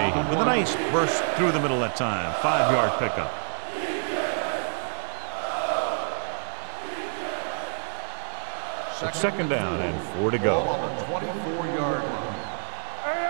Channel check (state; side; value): silent; left; 60 dB below the other